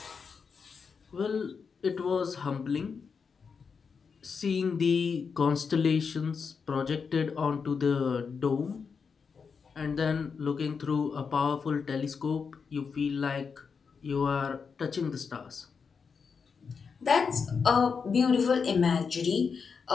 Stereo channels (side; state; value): right; quieter; 5.7 dB